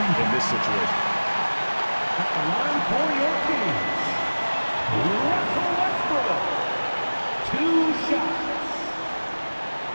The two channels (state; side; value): inverted; both; correlation -1.00